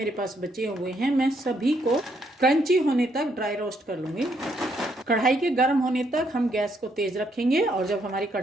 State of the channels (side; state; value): both; normal; correlation 0.73